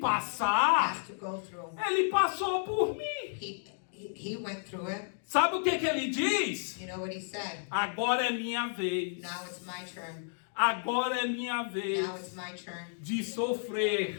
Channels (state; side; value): silent; right; digital silence